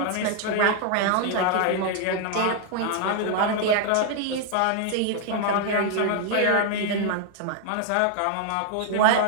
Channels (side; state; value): both; different; correlation 0.00